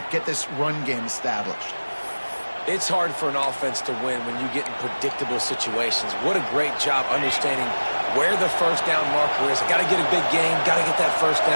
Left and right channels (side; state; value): both; inverted; correlation -1.00